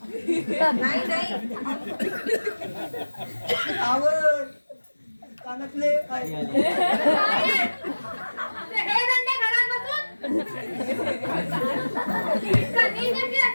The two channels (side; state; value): both; inverted; correlation -1.00